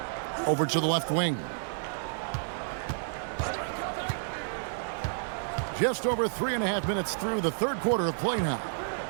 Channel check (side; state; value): left; silent; digital silence